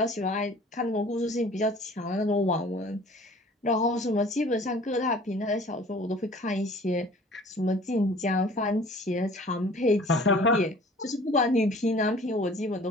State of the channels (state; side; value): normal; both; correlation 0.49